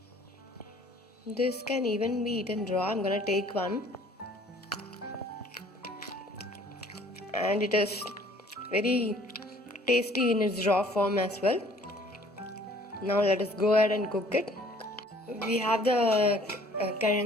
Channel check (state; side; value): normal; both; correlation 0.56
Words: This can even be eaten raw. I'm gonna take one, and it is very tasty in its raw form as well. Now let us go ahead and cook it. We have the